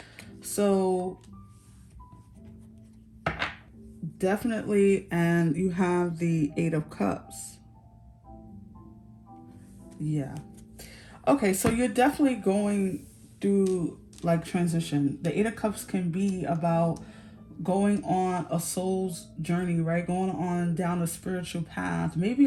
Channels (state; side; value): identical; both; correlation 1.00